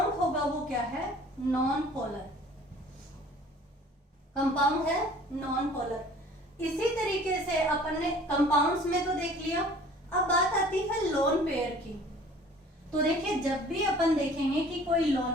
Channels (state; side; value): normal; both; correlation 0.50